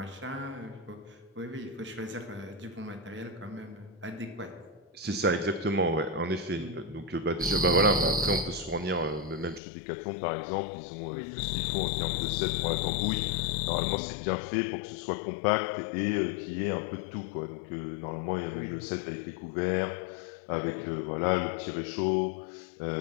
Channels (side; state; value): right; drops out; at 9.6 s